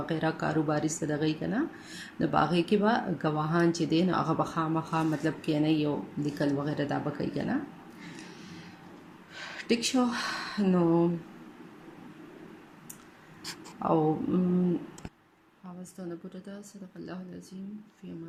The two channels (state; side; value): identical; both; correlation 1.00